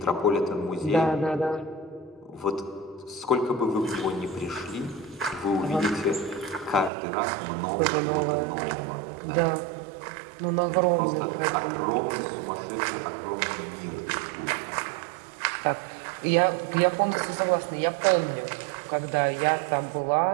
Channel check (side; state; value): left; drops out; at 6.9 s